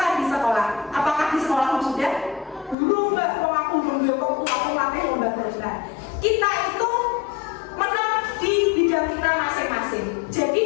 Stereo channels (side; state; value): right; drops out; at 2.8 s